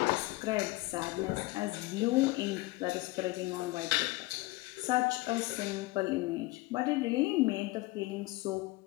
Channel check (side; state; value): right; quieter; 21.2 dB